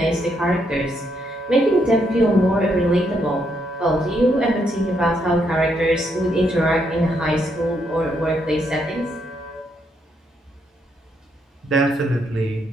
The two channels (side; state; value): both; normal; correlation 0.76